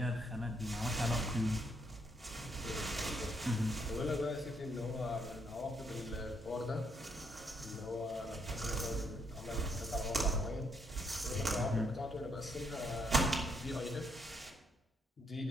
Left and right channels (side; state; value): both; normal; correlation 0.74